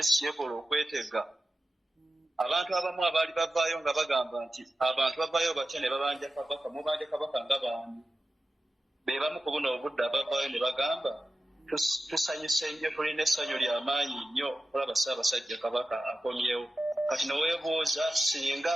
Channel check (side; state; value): both; normal; correlation 0.93